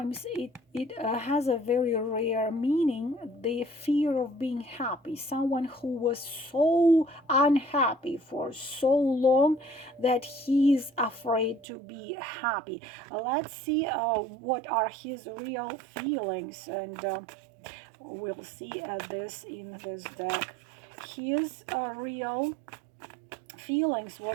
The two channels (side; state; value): left; drops out; at 11.7 s